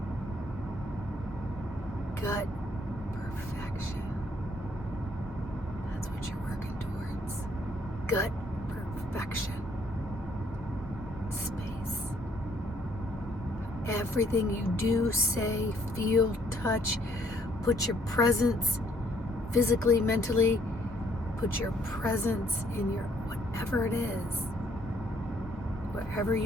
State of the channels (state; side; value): normal; both; correlation 0.66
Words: Gut perfection. That's what you're working towards. Gut perfection space. Everything you do, say, feel, touch, put your presence physically, mentally, put your presence in your whatever it is. Wherever